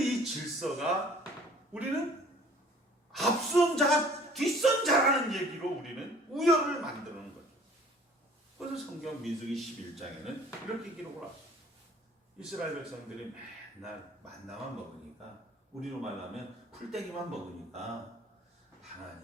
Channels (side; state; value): both; normal; correlation 0.51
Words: 질서가 우리는 앞선 자, 뒷선 자라는 얘기로 우리는 우열을 만드는 거죠. 그래서 성경 민수기 11장에는 이렇게 기록을 합니다. 이스라엘 백성들이 맨날 만나만 먹으니까 우리로 말하면 풀떼기만 먹으니까